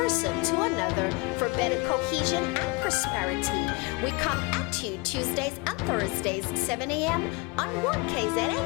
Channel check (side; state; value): right; quieter; 26.2 dB